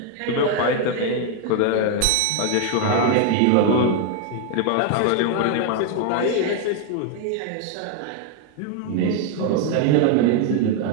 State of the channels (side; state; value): both; different; correlation 0.01